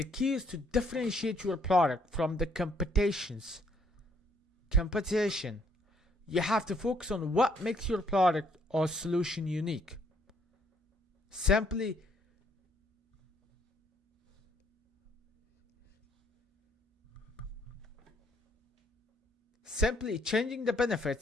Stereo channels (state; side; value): normal; both; correlation 0.67